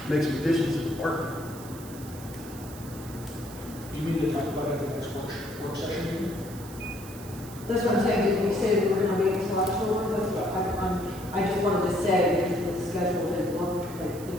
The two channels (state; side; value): noise; right; hiss, 17 dB below the sound